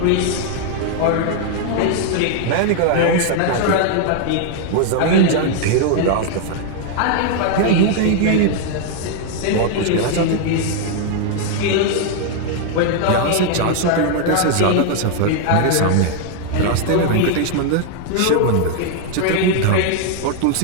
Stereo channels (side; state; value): both; different; correlation 0.00